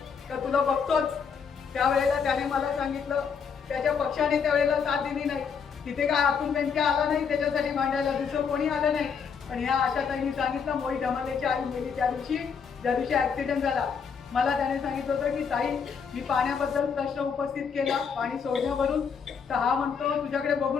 का तुला बघतोच, त्यावेळेला त्याने मला सांगितलं त्याच्या पक्षाने त्यावेळेला साथ दिली नाही. तिथे काय अतुल बेनके आला नाही त्याच्यासाठी मांडायला, दुसरं कोणी आलं नाही. पण ह्या आशाताईंनी सांगितलं, मोही धमालेची आई मेली त्या दिवशी ऍक्सिडेंट झाला. मला त्याने सांगितलं होतं की ताई, मी पाण्याबद्दल प्रश्न उपस्थित केला पाणी सोडण्यावरून, तर हा म्हणतो तुझ्याकडे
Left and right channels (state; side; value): quieter; right; 6.4 dB